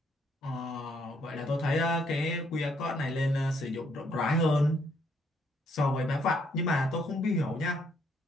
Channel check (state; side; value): normal; both; correlation 0.70